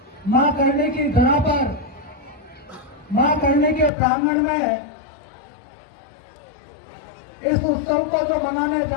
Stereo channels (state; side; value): drops out; right; at 3.9 s